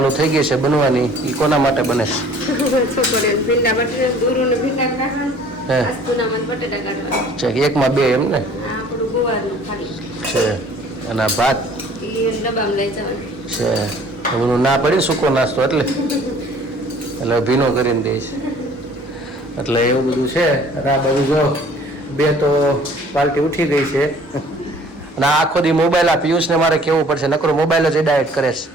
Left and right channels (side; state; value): both; normal; correlation 0.53